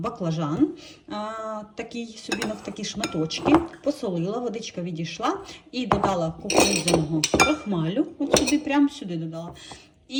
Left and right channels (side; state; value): both; identical; correlation 1.00